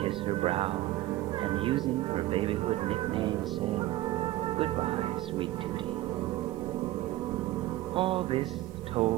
her brow, and using her babyhood nickname said, "Goodbye, sweet Tootie." All this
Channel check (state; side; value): quieter; left; 16.1 dB